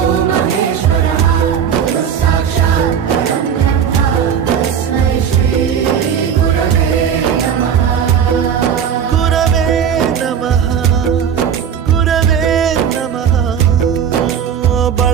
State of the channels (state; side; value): quieter; left; 8.0 dB